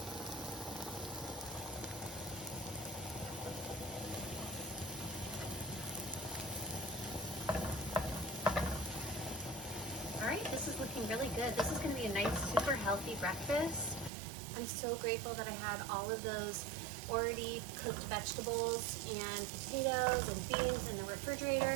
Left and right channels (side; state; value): left; drops out; at 14.1 s